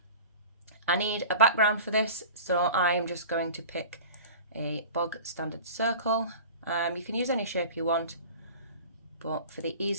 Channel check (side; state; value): both; inverted; correlation -0.39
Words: I need a background for this, so I'm just going to pick a bog standard circle. You can use any shape you want, but for the